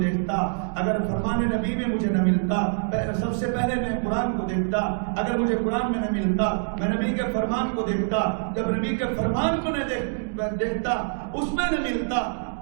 دیکھتا، اگر فرمان نبی میں مجھے نہ ملتا سب سے پہلے میں قرآن کو دیکھتا، اگر مجھے قرآن میں نہ ملتا میں نبی کے فرمان کو دیکھتا، جب نبی کے فرمان کو نہ دیکھتا اس میں نہ ملتا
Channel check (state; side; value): silent; left; digital silence